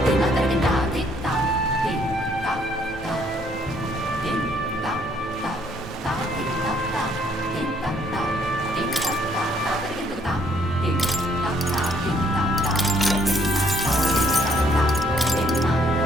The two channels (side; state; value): both; normal; correlation 0.66